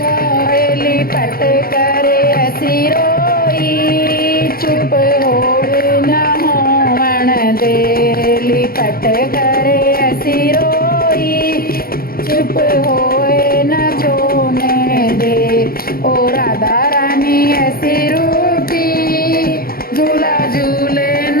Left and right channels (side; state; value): right; late; 0.43 ms